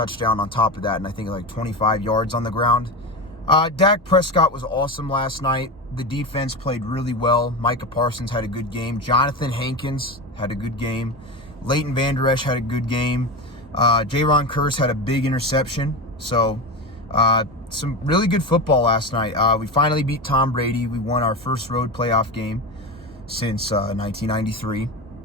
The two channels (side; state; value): both; normal; correlation 0.22